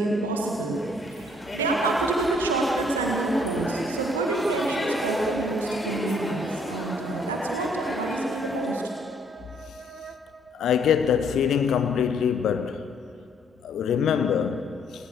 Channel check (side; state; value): both; normal; correlation 0.64